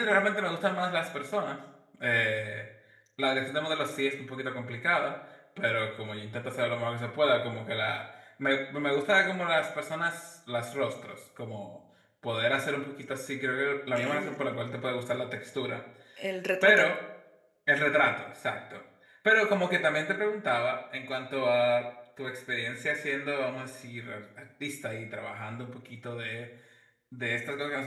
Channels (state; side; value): identical; both; correlation 1.00